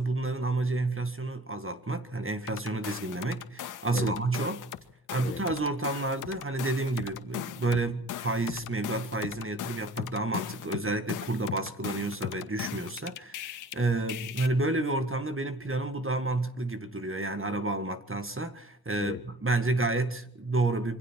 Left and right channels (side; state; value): both; normal; correlation 0.48